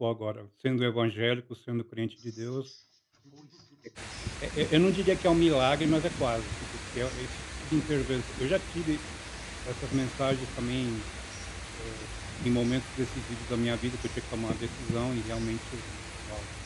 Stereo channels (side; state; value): both; identical; correlation 1.00